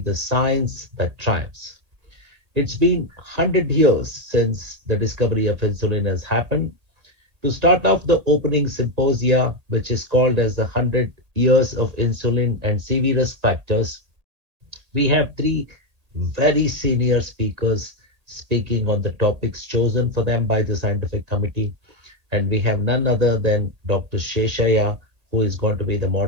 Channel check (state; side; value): late; left; 1.8 ms